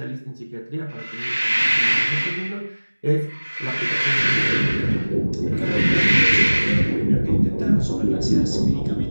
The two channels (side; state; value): both; inverted; correlation -1.00